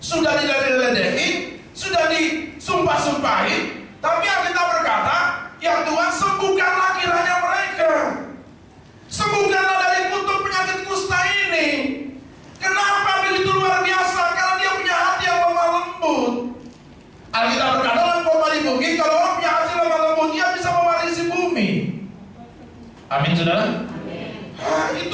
sudah diledek-ledekin, sudah disumpah-sumpahin, tapi Alkitab berkata, ya Tuhan, sembuhkanlah kiranya mereka. Sembuhkanlah dari kutuk penyakit kusta ini. Kenapa begitu luar biasa? Karena dia punya hati yang lemah lembut. Alkitab berkata dalam khotbah di bukit, kalau orang punya hati lemah lembut, dia bisa mewarisi bumi. Amin, saudara? Amin.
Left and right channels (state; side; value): identical; both; correlation 1.00